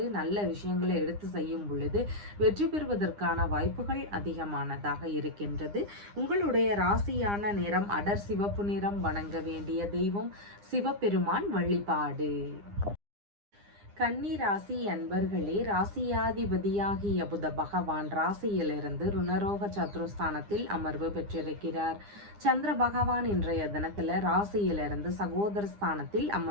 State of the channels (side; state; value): left; late; 9.9 ms